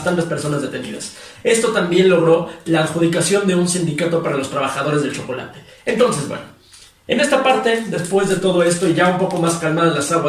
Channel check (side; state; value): both; identical; correlation 1.00